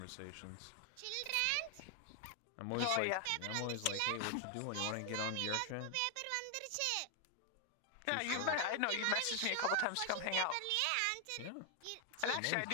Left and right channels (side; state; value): both; different; correlation 0.00